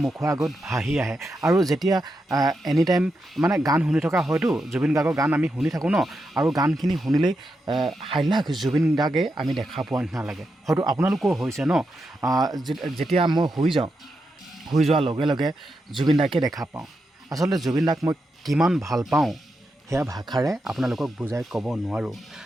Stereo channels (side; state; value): both; normal; correlation 0.86